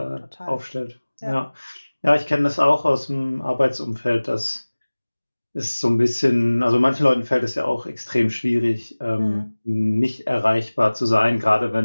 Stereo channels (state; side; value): inverted; both; correlation -1.00